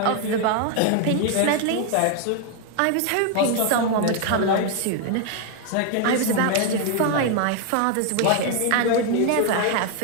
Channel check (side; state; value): both; different; correlation 0.01